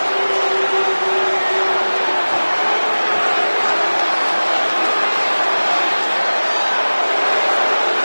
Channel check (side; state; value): both; inverted; correlation -1.00